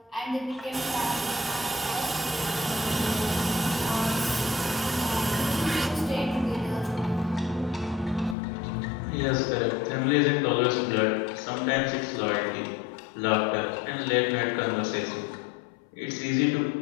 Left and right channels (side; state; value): right; drops out; at 8.3 s